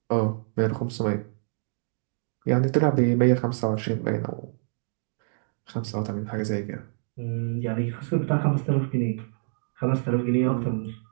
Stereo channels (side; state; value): left; silent; digital silence